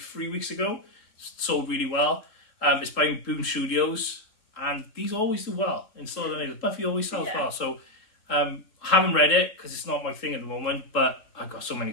weeks ago. Sold really well. It's by Boom Studios, and these always do well. In Still the Buffy always sells well, so haven't read it because it's not my thing at the moment, but I've got so many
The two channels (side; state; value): right; late; 3.7 ms